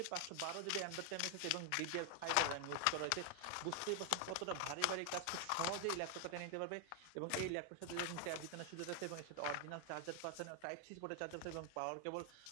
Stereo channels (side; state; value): both; different; correlation 0.00